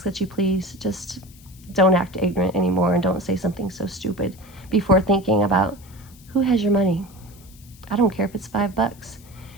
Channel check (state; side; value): noise; left; hiss, 25 dB below the sound